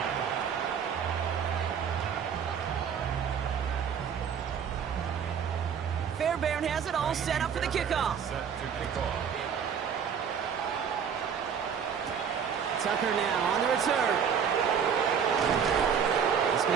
Fairbairn has it all set up for the kickoff. Tucker now on the return. This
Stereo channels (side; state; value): left; quieter; 7.4 dB